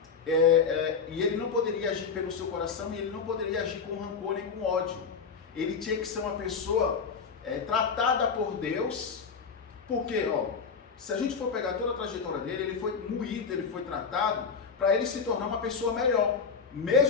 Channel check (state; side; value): quieter; right; 5.7 dB